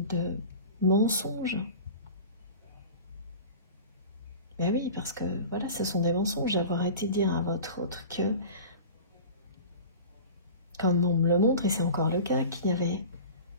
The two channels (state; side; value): inverted; both; correlation -0.36